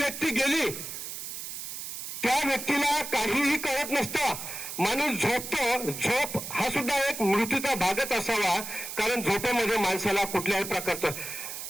गेली, त्या व्यक्तीला काहीही कळत नसतं. माणूस झोपतो. झोप हा सुद्धा एक मृत्यूचा भागच असावा, कारण झोपेमध्ये माणसाला कुठल्याही प्रकारचं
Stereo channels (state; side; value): noise; right; hiss, 7 dB below the sound